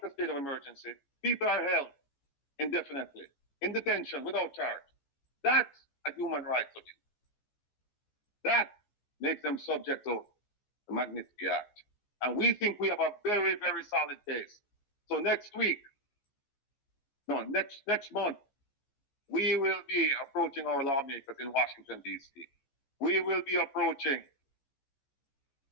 a state of emergency, people are held indefinitely in detention without charge. That's a human rights abuse. That makes them subject to the Magnitsky Act. And we think we have a very, very solid case. So next month, we will be approaching our lawmakers in Washington, D.C. We will be approaching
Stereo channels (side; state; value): right; late; 14 ms